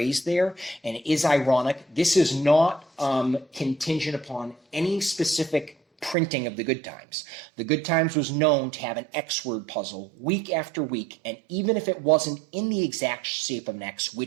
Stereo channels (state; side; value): drops out; left; at 6.2 s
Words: there, and it is ironic. This is not contingent upon any specific printing of the Good Times. The Good Times was known to have an X-word puzzle week after week, and even if it wasn't in the exact shape of an X,